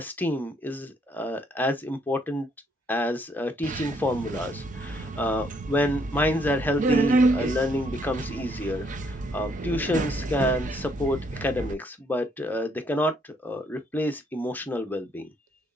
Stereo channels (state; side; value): normal; both; correlation 0.69